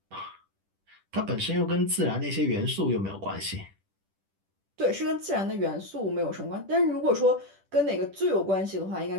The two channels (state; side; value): late; left; 10 ms